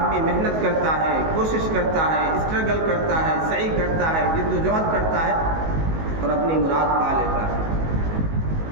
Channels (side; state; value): left; late; 19 ms